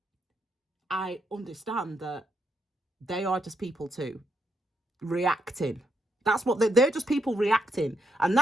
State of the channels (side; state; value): both; normal; correlation 0.79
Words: I understand that they are just people too, reacting. That's what they're just people reacting. And